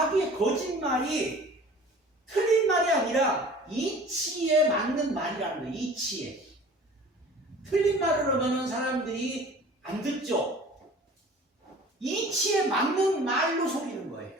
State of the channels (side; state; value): both; normal; correlation 0.45